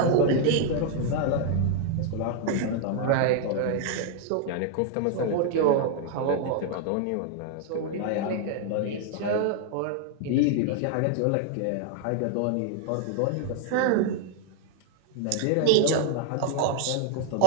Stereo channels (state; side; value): different; both; correlation 0.00